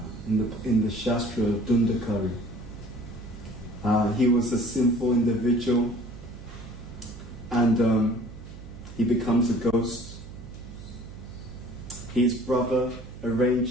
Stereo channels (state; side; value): noise; right; hum, 14 dB below the sound